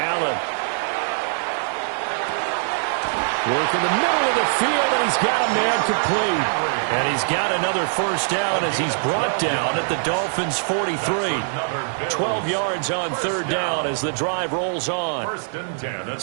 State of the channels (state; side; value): silent; left; 64 dB below the other